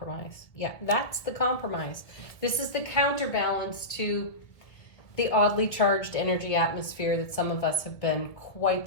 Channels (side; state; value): right; late; 1.8 ms